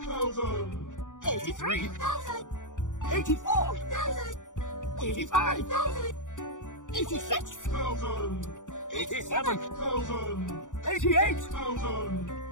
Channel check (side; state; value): right; late; 0.86 ms